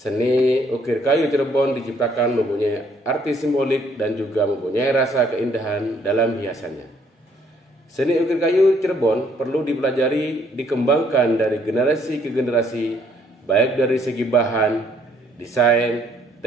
ukir kayu Cirebon diciptakan mempunyai arti simbolik dan juga mempunyai rasa keindahan dalam hiasannya. Seni ukir kayu Cirebon perlu dipelajari, dikembangkan dari generasi ke generasi, baik dari segi bahan, desain,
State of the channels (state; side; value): normal; both; correlation 0.66